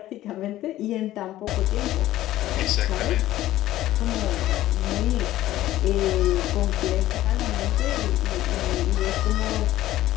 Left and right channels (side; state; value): right; quieter; 14.6 dB